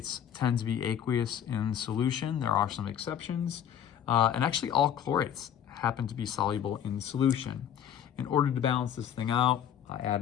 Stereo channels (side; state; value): right; quieter; 9.4 dB